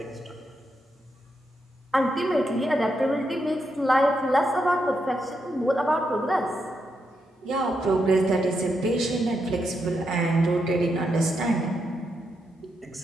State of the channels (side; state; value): both; normal; correlation 0.82